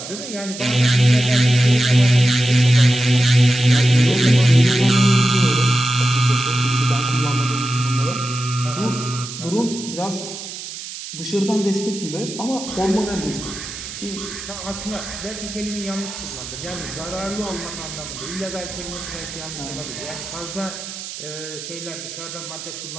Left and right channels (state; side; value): noise; right; hiss, 10 dB below the sound